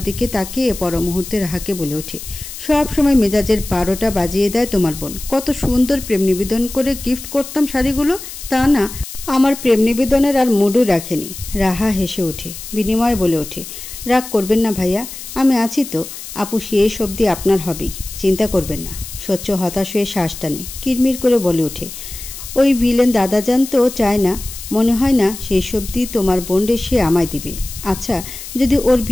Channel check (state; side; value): noise; left; hiss, 11 dB below the sound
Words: দিকে তাকিয়ে পর মুহূর্তে রাহাকে বলে ওঠে, সব সময় মেজাজের 12টা বাজিয়ে দেয় তোমার বোন। কত সুন্দর প্রেম নিবেদন করে গিফট করতাম শাড়িগুলো, তা না, আমার প্রেম নিবেদনের আর মুডও রাখেনি। রাহা হেসে ওঠে, বিনিময়ে বলে ওঠে, রাগ করবেন না ভাইয়া, আমি আছি তো। আপু শেষ অবধি আপনার হবেই, চিন্তা করবেন না। স্বচ্ছ হতাশ হয়ে শ্বাস টানে, কিরমির করে বলে ওঠে, ওই ভিলেন দাদাজান তো চায় না, মনে হয় না শেষ অবধি তোমার বোনরে সে আমায় দিবে। আচ্ছা, যদি ওর